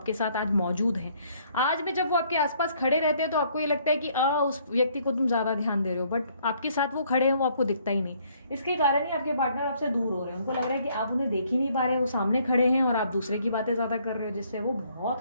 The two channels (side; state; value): both; inverted; correlation -0.65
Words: साथ आज मौजूद हैं। आज भी जब वो आपके आसपास खड़े रहते हैं तो आपको ये लगता है कि उस व्यक्ति को तुम ज्यादा ध्यान दे रहे हो, बट आपके साथ वो खड़े हैं, वो आपको दिखता ही नहीं। इसके कारण ही आपके पार्टनर आपसे दूर हो रहे हैं। उनको लग रहा है कि आप उन्हें देख ही नहीं पा रहे, वो सामने खड़े हैं और आप दूसरे की बातें ज्यादा कर रहे हो, जिससे वो